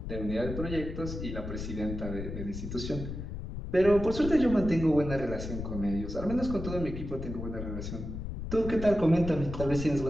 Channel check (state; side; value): noise; left; rumble, 7 dB below the sound